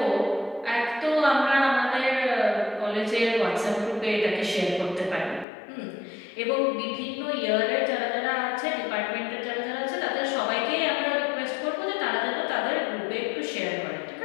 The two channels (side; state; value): right; drops out; at 5.5 s